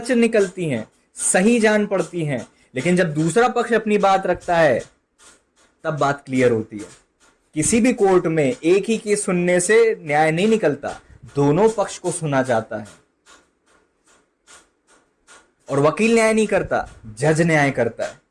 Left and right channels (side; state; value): both; identical; correlation 1.00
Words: निकलती हैं, सही जान पड़ती हैं, लेकिन जब दूसरा पक्ष अपनी बात रखता है तब बात क्लियर होती है। किसी भी कोर्ट में एक ही केस सुनने से न्याय नहीं निकलता, दोनों पक्ष को सुना जाता है। और वकील न्याय नहीं करता, जज न्याय करता है।